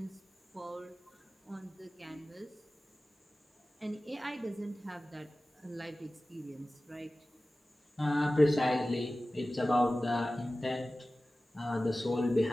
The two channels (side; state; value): both; normal; correlation 0.96